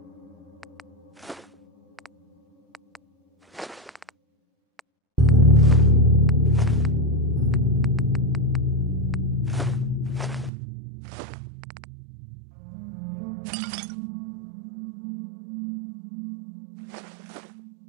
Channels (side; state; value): left; drops out; at 10.5 s